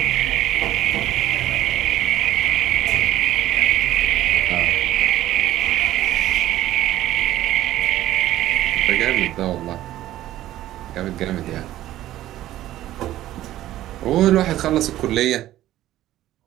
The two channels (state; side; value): quieter; left; 14.0 dB